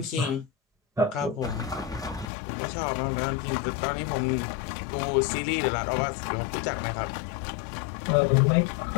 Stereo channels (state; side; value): drops out; right; at 2.3 s